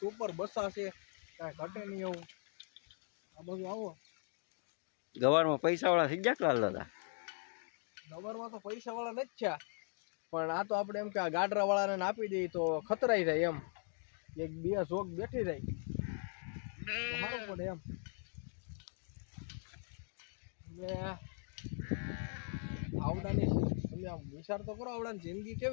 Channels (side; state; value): right; silent; 51 dB below the other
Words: સુપર બસા છે, કાંઈ ઘટે નહીં એવું. આ બધું આવો ગવારમાં પૈસાવાળા થઈ ગયા લાલ દાદા. ગવરમાં તો પૈસાવાળા નથી થયા, પણ આ તો આપણે એમ કે આ ગાડરાવાળાને આપી દઈએ તો ખતરાઈ જાય એમ, એક બે જોક બેઠી જાય તો સારું પડે એમ. એટલે આવડાની તમે આમ વિચાર તો કરો, આવડાની જિંદગી